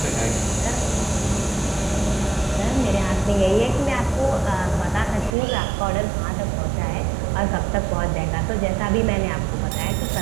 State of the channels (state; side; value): drops out; left; at 5.4 s